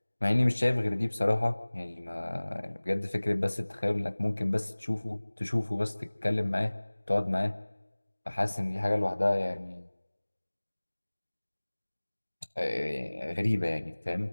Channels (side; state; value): both; inverted; correlation -1.00